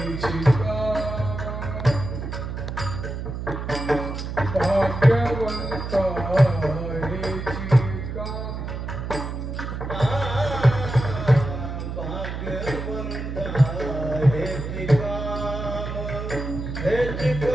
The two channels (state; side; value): noise; right; hum, 6 dB below the sound